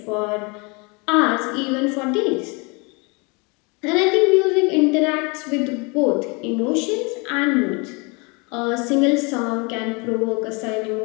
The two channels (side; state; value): right; quieter; 29.8 dB